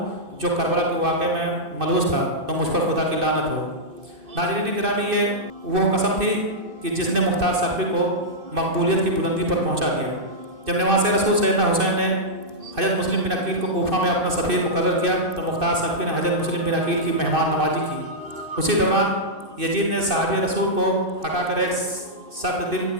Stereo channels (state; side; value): late; left; 2.6 ms